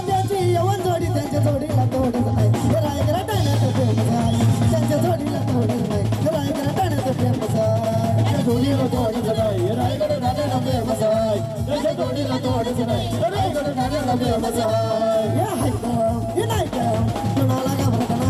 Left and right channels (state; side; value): identical; both; correlation 1.00